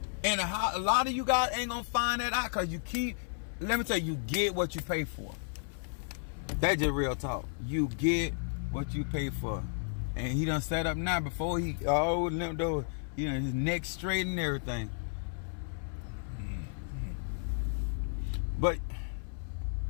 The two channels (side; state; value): right; silent; 56 dB below the other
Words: And a lot of you guys ain't gonna find that out because let me tell you, you get what you pay for. That's just real talk. You get what you pay for. And he done set up now before he limped over, his neck straight and everything. But